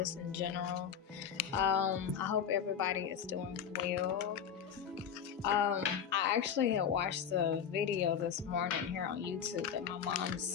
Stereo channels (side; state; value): right; quieter; 8.0 dB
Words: in general. I hope everybody is doing well. I actually had watched the video this morning here on YouTube that my mom